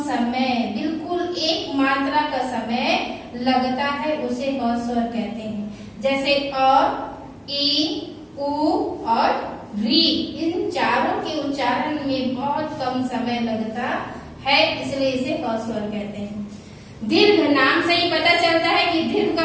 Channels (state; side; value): identical; both; correlation 1.00